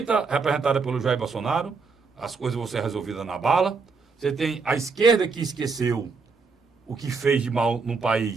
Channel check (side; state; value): left; quieter; 4.7 dB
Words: representada pelo Jair Bolsonaro, as coisas vão ser resolvidas na bala. Você tem a esquerda que esqueceu o que fez de mal no